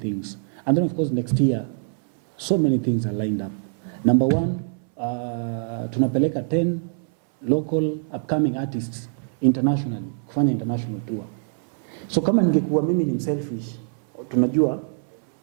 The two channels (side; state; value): left; silent; 61 dB below the other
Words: And then of course next year, so many things are lined up. Number one, tunapeleka 10 local upcoming artists internationally, kufanya international tour. So kama ningekuwa mimi ni selfish, tunajua,